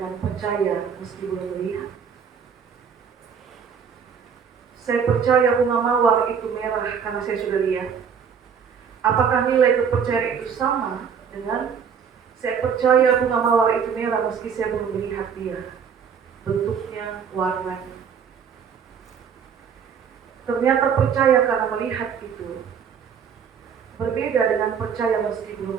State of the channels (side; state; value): left; quieter; 7.0 dB